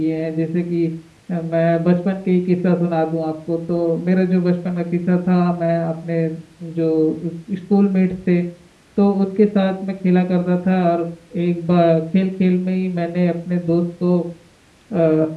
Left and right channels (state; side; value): identical; both; correlation 1.00